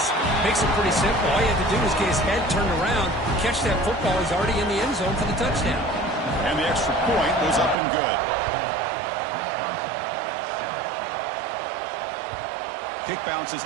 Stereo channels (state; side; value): drops out; left; at 7.8 s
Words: makes it pretty simple. All you have to do is get his head turned around, catch that football. He's already in the end zone for the touchdown. And the extra point was up and good. Kick bounces